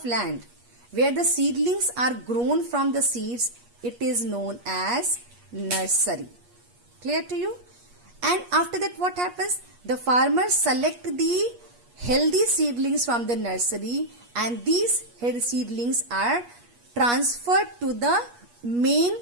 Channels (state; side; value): late; left; 8.4 ms